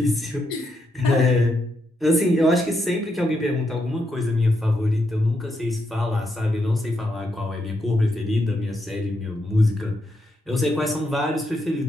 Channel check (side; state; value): both; normal; correlation 0.80